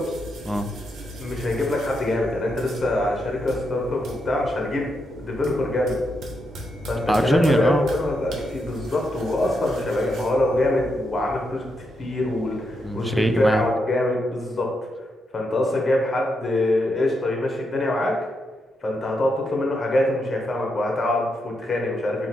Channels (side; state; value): both; normal; correlation 0.82